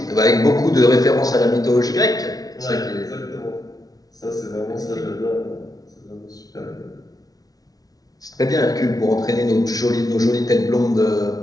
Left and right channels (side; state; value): right; late; 0.18 ms